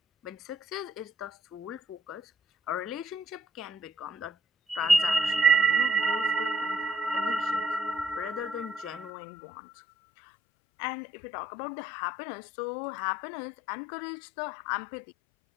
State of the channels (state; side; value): drops out; right; at 9.1 s